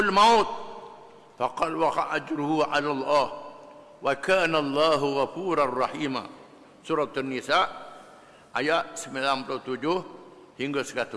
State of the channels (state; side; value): identical; both; correlation 1.00